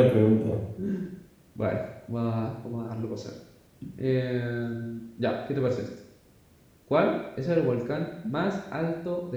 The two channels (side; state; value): both; identical; correlation 1.00